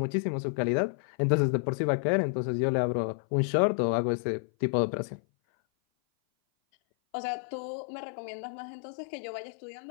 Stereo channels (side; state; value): right; silent; 56 dB below the other